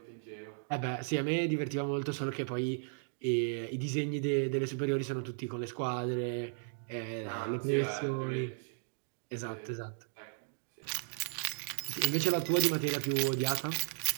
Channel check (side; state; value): left; silent; digital silence